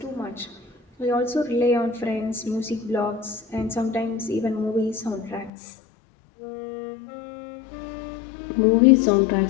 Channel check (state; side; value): drops out; right; at 5.5 s